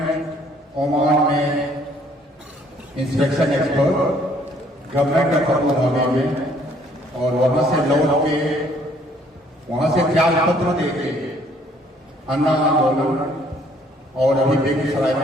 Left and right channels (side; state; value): both; normal; correlation 0.62